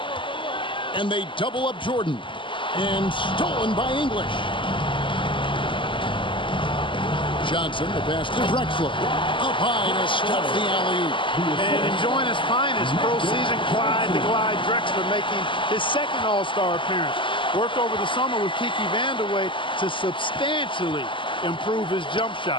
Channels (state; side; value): late; right; 0.24 ms